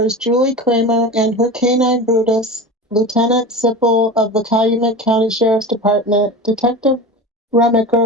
Julie Kramer and her canine Brutus, Lieutenant Sipple of the Calumet County Sheriff's Department, Detective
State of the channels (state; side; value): normal; both; correlation 0.30